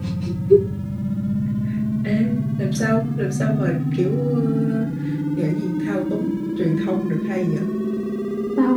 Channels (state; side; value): identical; both; correlation 1.00